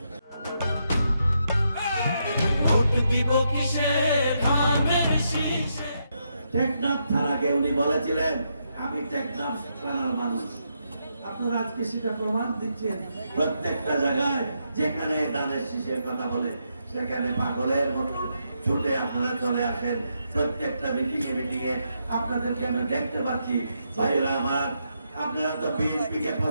টেকনাফ থানাকে উনি বলেছিলেন আমি টেকনাফ থানার মানুষ। আপনারা আজকে সেটা প্রমাণ দিচ্ছেন। প্রত্যেকটা জায়গায় যেখানে দানের শীষের কথা বলে সেখানে পাগলের মতো ছুটে আপনারা চলে আসেন। প্রত্যেকটা মিটিংয়ে আপনাদেরকে আমি দেখতে পাচ্ছি। ভাইরা আমার, আপনারা তো বিএনপিকে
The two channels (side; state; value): both; inverted; correlation -0.81